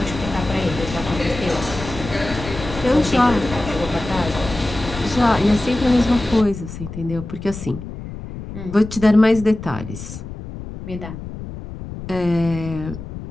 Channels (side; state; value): left; noise; rumble, 10 dB below the sound